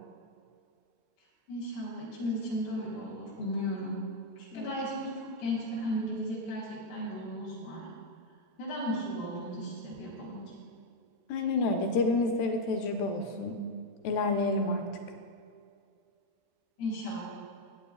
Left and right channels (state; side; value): late; right; 13 ms